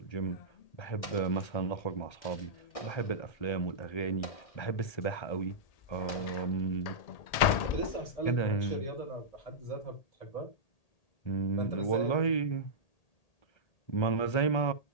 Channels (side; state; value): right; late; 1.8 ms